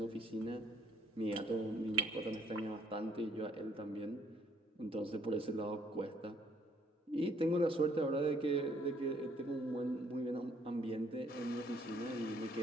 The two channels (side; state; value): both; normal; correlation 0.65